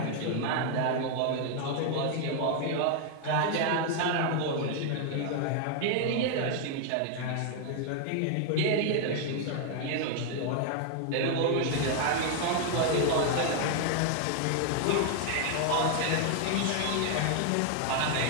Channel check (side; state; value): both; different; correlation 0.00